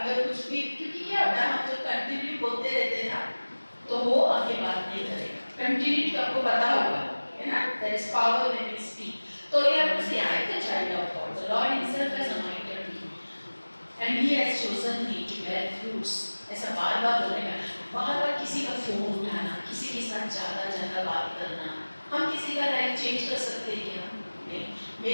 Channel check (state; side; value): inverted; both; correlation -1.00